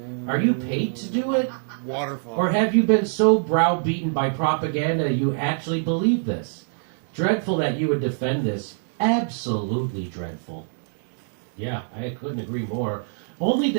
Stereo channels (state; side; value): silent; left; 61 dB below the other